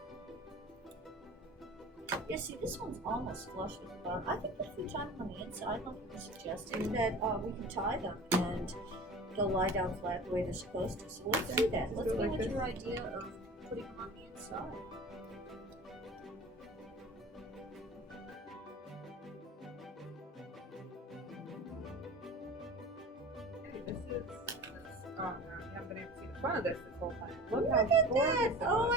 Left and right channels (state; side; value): normal; both; correlation 0.38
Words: Yeah, see, this one's almost flush with the bottom. I think that if we tie them on the inside, like you were suggesting, that we can tie them and they'll lie down flat the way they're supposed to. So let's do that. Let's go with your idea of putting them on the inside. Oh no, you haven't been able to see the front of this whole time. Look at that! Oh